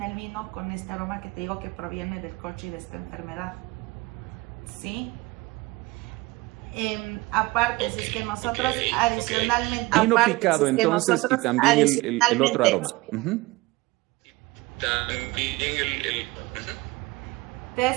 el vino con este aroma que te digo que proviene del corcho y de esta enfermedad. ¿Sí? Aparte, si es que nosotros adicionalmente... Vino aparte, picado, si es que entonces, y también el otro aroma. También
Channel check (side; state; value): left; quieter; 21.8 dB